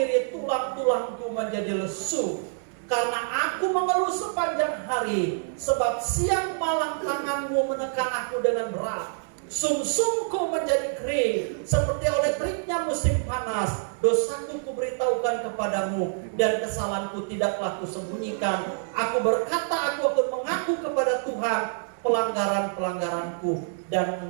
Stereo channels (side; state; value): left; silent; digital silence